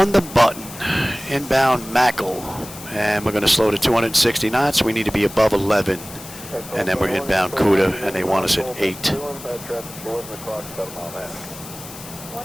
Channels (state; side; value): noise; left; hiss, 15 dB below the sound